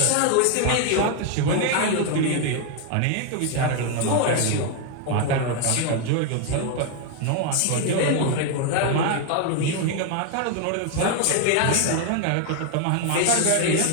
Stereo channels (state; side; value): different; both; correlation 0.01